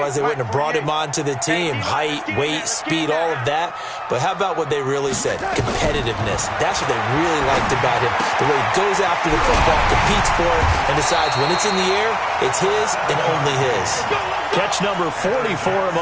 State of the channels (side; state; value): both; identical; correlation 1.00